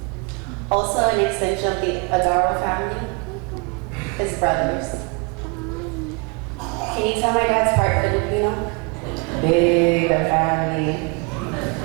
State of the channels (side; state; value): left; quieter; 32.0 dB